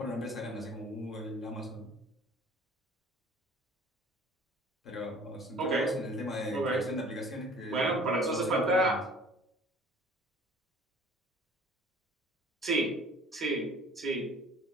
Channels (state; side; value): normal; both; correlation 0.49